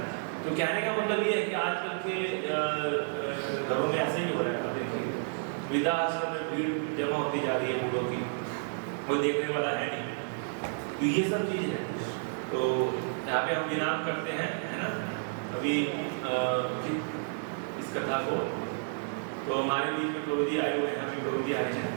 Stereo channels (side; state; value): left; silent; digital silence